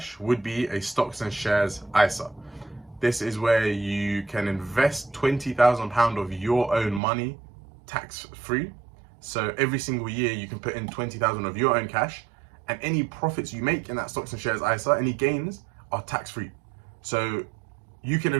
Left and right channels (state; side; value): drops out; left; at 7.0 s